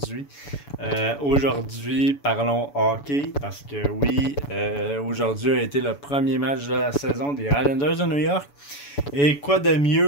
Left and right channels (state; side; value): late; right; 7.0 ms